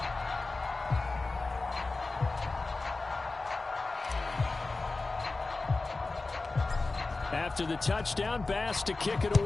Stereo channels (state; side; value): quieter; right; 3.5 dB